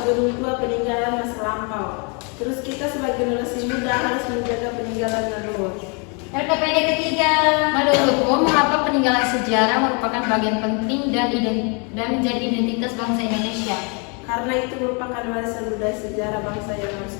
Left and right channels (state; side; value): quieter; right; 34.6 dB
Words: gedung tua peninggalan masa lampau. Terus kita sebagai generasi muda harus menjaga peninggalan leluhur. LKPD ketiga. Menurutmu, mengapa peninggalan sejarah merupakan bagian penting dan menjadi identitas bangsa Indonesia? Karena itu merupakan warisan budaya sejarah bangsa yang harus